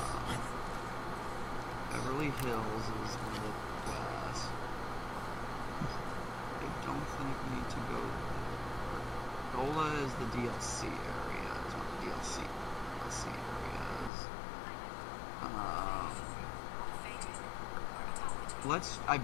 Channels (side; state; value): right; drops out; at 14.1 s